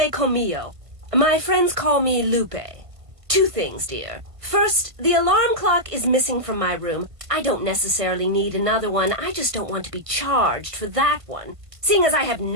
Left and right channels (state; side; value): late; left; 1.5 ms